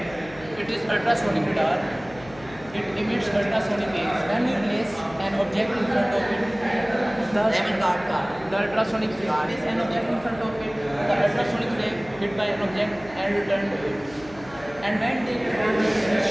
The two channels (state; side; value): noise; left; hum, 20 dB below the sound